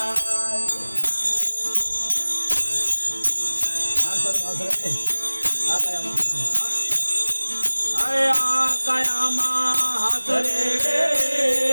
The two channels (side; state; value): both; inverted; correlation -1.00